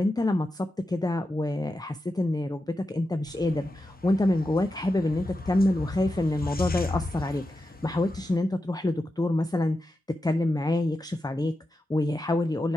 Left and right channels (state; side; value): normal; both; correlation 0.89